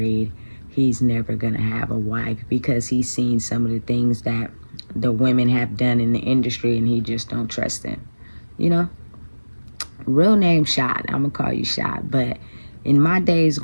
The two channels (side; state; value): both; inverted; correlation -1.00